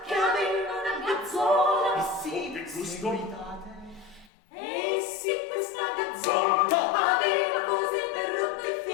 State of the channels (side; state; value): right; drops out; at 4.3 s